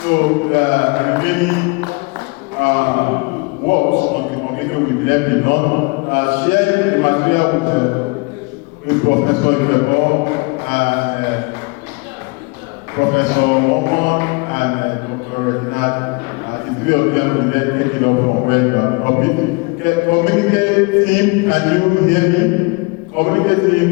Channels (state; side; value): quieter; right; 28.9 dB